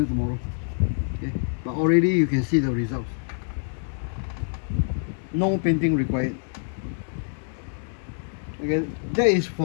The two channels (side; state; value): right; silent; digital silence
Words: tomorrow. Okay, but already you can see the results. No painting required. Okay, that is